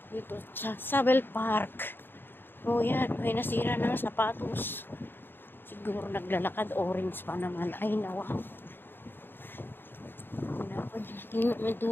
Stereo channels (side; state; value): right; late; 0.10 ms